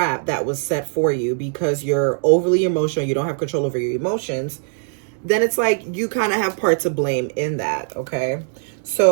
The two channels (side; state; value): left; silent; digital silence